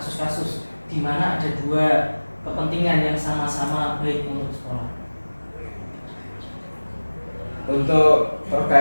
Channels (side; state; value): both; inverted; correlation -1.00